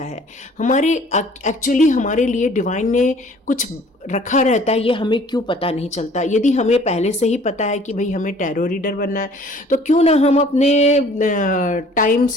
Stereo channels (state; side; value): normal; both; correlation 0.53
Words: है, हमारे एक्चुअली हमारे लिए डिवाइन ने कुछ रखा रहता है, ये हमें क्यों पता नहीं चलता। यदि हमें पहले से ही पता है कि भाई हमें टैरो रीडर बनना है, तो क्यों ना हम अपने टाइम